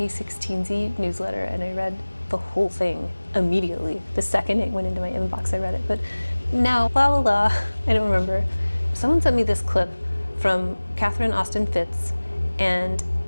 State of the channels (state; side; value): inverted; both; correlation -1.00